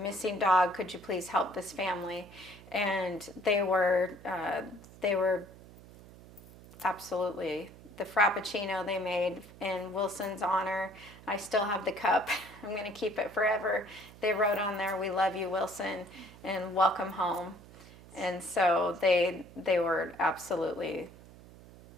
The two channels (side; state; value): right; noise; hum, 20 dB below the sound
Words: dog, could you please help this family? And they were absolutely. The Frappuccino they made in Wilson's honor, I still have the cup. I'm going to keep it forever. They wrote on there, "We love you, Wilson, and welcome home." And so they were absolutely